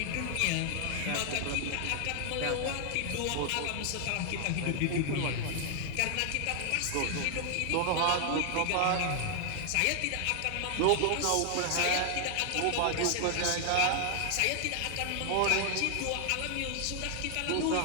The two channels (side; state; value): both; different; correlation 0.00